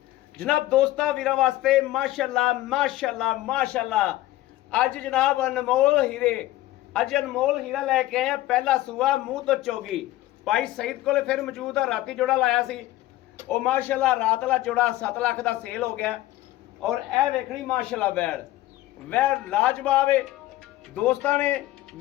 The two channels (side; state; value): right; quieter; 16.1 dB